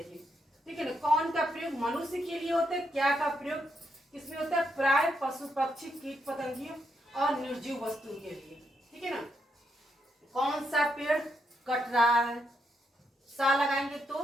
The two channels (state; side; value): normal; both; correlation 0.80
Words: ठीक है ना, कौन का प्रयोग मनुष्य के लिए होता है, क्या का प्रयोग किसमें होता है, प्राय पशु पक्षी कीट पतंगियों और निर्जीव वस्तु के लिए। ठीक है ना, कौन सा पेड़ कट रहा है, सा लगाएंगे